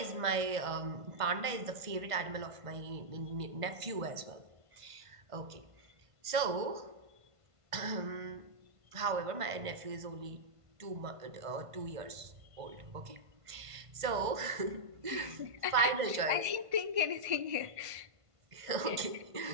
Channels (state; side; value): late; left; 1.5 ms